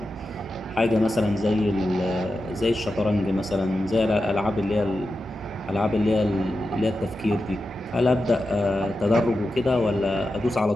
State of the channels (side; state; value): right; noise; rumble, 23 dB below the sound